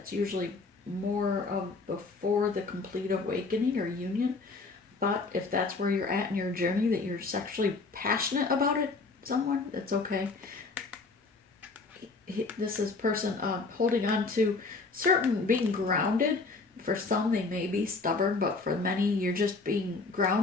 usually more of before the complete awakening or union. But if that's where you're at in your journey, that you're sexually passionate about it, someone, that's okay. This is person holding on to certain, being grounded. For some, they may be stubborn, but for many, you're just being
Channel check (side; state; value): right; quieter; 3.9 dB